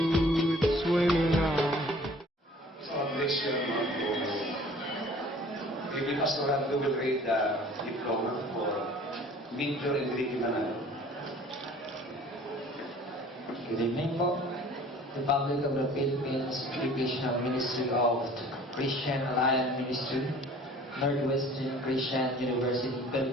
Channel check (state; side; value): normal; both; correlation 0.50